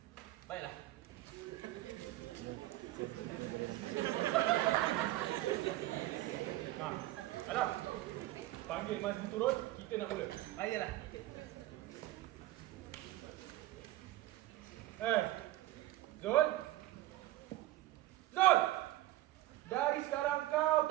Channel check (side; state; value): left; quieter; 16.1 dB